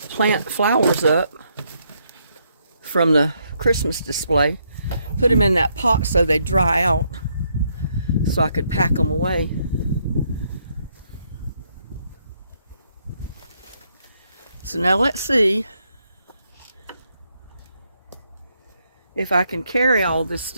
plant flowers up from the Christmas display. Put them in that pot so they dry out so I could pack them away. So now let's see if I can carry all this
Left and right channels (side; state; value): both; inverted; correlation -0.75